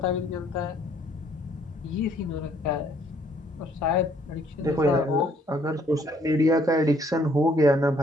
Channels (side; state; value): both; normal; correlation 0.64